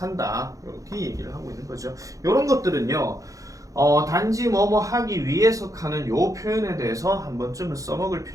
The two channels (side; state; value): left; late; 0.16 ms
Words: 이렇게 얘기를 하고 있는 거죠. 이런 것들은요. 단지 뭐뭐 하기 위해서 하는 요 표현에 대해서 한 번쯤은 써먹을